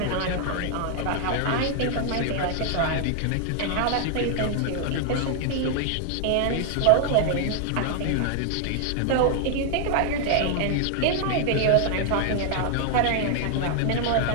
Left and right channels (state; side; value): different; both; correlation 0.00